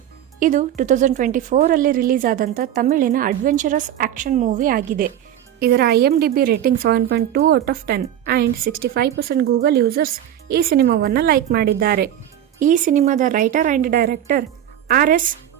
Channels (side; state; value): left; quieter; 11.0 dB